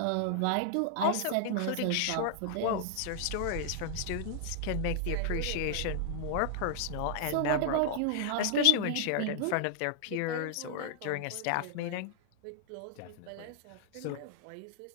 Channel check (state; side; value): different; both; correlation -0.01